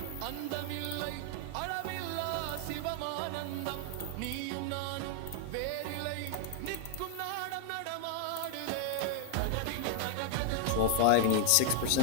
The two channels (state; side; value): different; both; correlation 0.00